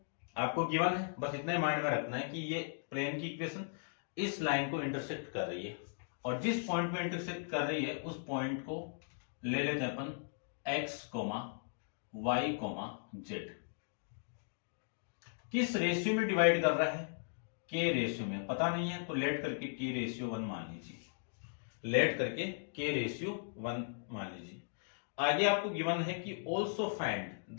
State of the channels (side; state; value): right; silent; digital silence